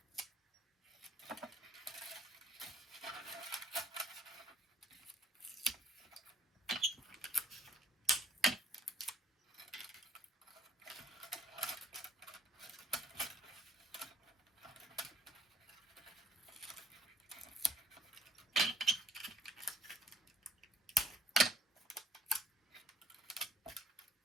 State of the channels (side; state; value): both; normal; correlation 0.60